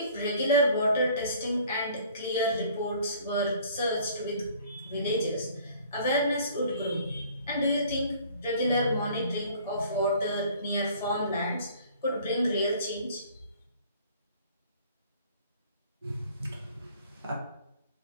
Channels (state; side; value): inverted; both; correlation -0.53